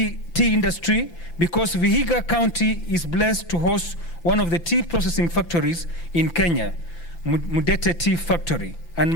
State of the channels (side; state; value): right; late; 5.9 ms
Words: industry because Vihiga County is blessed to host one of the tea processing factories in Kenya, Mudete Tea Factory, and